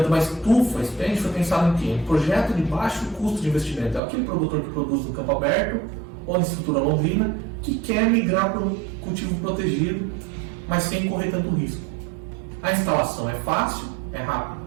uma estufa Spanish foi pensado em quê? Um projeto de baixo custo de investimento. É aquele produtor que produz no campo aberto ou na estrutura Londrina que quer migrar para um cultivo protegido, mas sem correr tanto risco. A instalação é fácil, é rápida.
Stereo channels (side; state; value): left; drops out; at 4.0 s